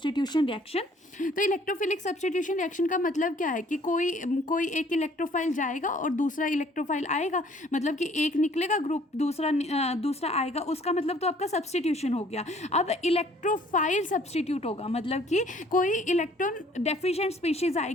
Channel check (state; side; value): normal; both; correlation 0.58